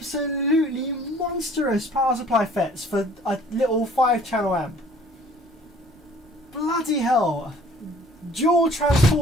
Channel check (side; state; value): both; normal; correlation 0.53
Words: monstrous power supply FETs for a little 5-channel amp. Bloody hell! Dual